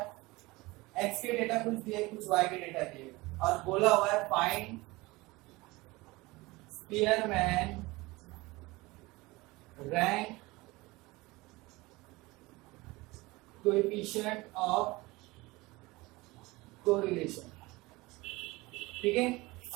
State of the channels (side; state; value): left; quieter; 21.9 dB